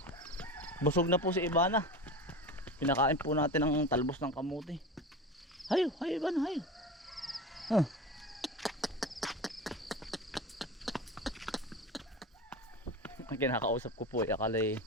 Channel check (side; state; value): both; normal; correlation 0.28